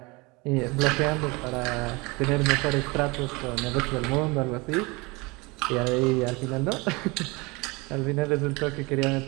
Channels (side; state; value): left; quieter; 25.6 dB